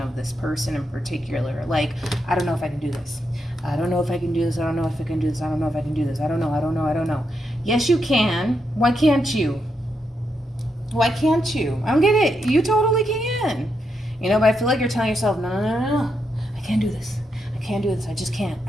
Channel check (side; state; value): both; normal; correlation 0.82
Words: this person in particular. Like, I don't know if I can do this. I don't know if I can do this. I don't know if I can do this. I don't know if I can do this. I don't know. I don't know. I don't know. Yes, you can. Why can't you? Why can't you? I don't get it. You totally can. You know, but I feel like you're telling yourself, no, no, no, no, no. I can't do this. I can't do this. I just can't.